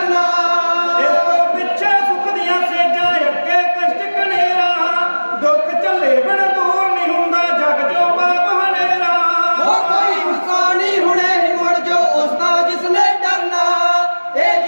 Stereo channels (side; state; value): both; inverted; correlation -1.00